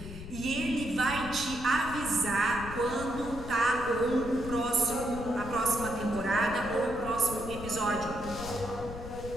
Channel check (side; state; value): left; noise; rumble, 11 dB below the sound